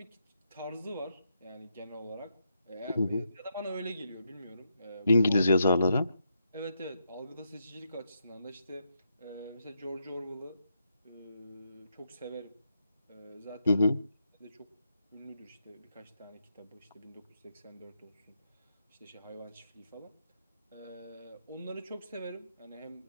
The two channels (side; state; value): both; inverted; correlation -0.81